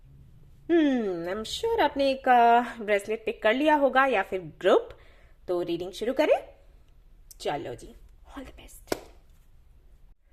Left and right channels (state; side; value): identical; both; correlation 1.00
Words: I am sure आपने एक ब्रेसलेट पिक कर लिया होगा या फिर ग्रुप। तो रीडिंग शुरू करें। चलो जी, all the best.